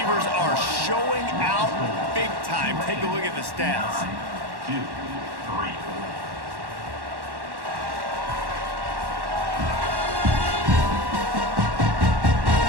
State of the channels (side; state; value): left; late; 1.1 ms